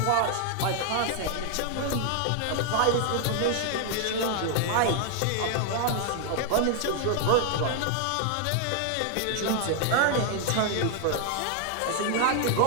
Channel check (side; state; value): both; different; correlation 0.00